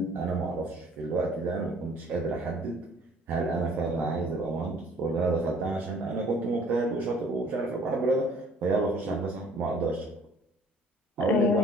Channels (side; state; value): both; normal; correlation 0.55